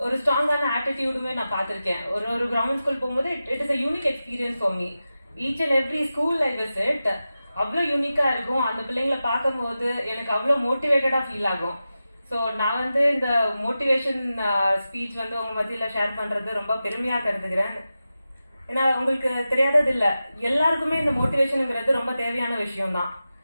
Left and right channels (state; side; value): inverted; both; correlation -0.93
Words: ஒரு ஸ்ட்ராங்கான ஆட்டிடியூடுமே நான் பார்த்துருக்கேன். ஒரு கவர்மெண்ட் ஸ்கூல் போகும்போது it is a unique experience for me. Each and every school I visit அவ்வளோ யூனிக்கா இருக்கும். அந்த பிள்ளைங்களை பார்க்கும்போது எனக்கு அவ்வளோ மோட்டிவேட்டடா ஃபீல் ஆகும். ஸோ நான் வந்து இந்த மோட்டிவேஷன் ஸ்பீச் வந்து உங்க மத்தியில ஷேர் பண்றது ரொம்ப பெருமையா கருதுகிறேன். ஏன்னா உங்களுக்கு தெரியாதது இல்லை, எல்லாருக்குமே இந்த மோட்டிவேஷனுங்கிறது ரொம்ப தேவையான விஷயம் தான்.